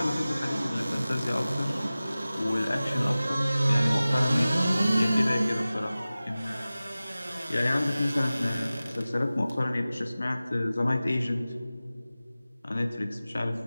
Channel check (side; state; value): both; inverted; correlation -0.97